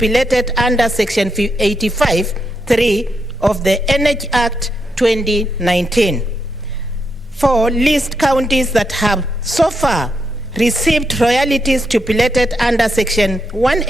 under Section 85(3) of the Energy Act 2019. 4, list counties that have so far received royalties stipulated under Section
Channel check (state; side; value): normal; both; correlation 0.82